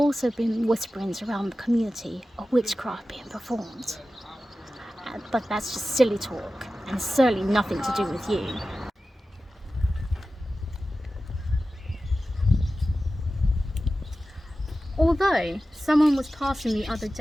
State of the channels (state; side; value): normal; both; correlation 0.94